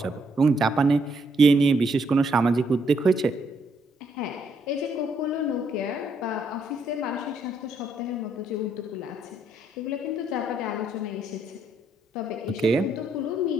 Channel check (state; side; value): normal; both; correlation 0.73